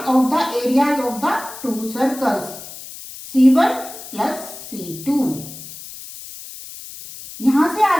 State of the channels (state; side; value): noise; left; hiss, 14 dB below the sound